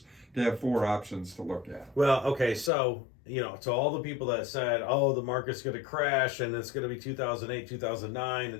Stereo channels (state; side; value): drops out; right; at 2.7 s